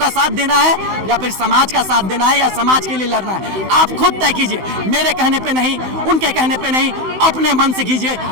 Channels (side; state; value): left; late; 16 ms